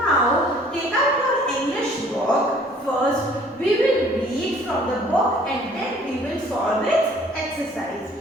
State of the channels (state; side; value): normal; both; correlation 0.56